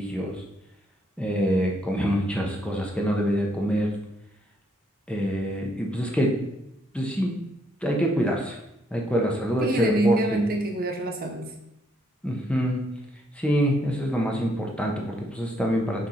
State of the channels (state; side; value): normal; both; correlation 0.72